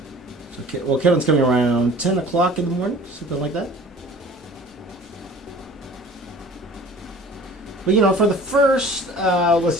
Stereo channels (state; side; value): normal; both; correlation 0.46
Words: So, well, Kevin's coming around 10 o'clock in the morning, something like that. But, you know, for the first, let's